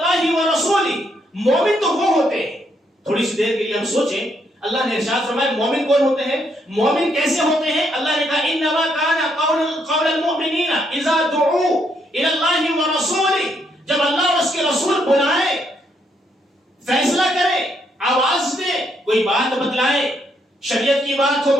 ورسولہ، مومن تو وہ ہوتے ہیں، تھوڑی سی دیر کے لیے ہم سوچیں، اللہ نے ارشاد فرمایا مومن کون ہوتے ہیں، مومن کیسے ہوتے ہیں؟ اللہ نے کہا انما کان قول المؤمنین اذا دعوا الی اللہ ورسولہ، جب اللہ اور اس کے رسول بلائے، فیصلہ کرے، آواز دے، کوئی بات بتلائے، شریعت کی بات ہو،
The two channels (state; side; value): normal; both; correlation 0.74